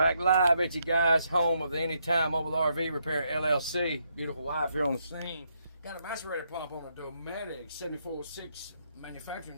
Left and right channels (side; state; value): both; inverted; correlation -0.77